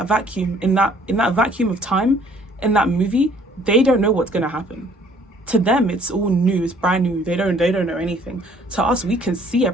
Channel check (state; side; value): normal; both; correlation 0.59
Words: vacuum, in that vacuum of time, in that movie, they don't know what's gonna happen. To them, it's all new, it's brand new. They don't know anything. To us, we can see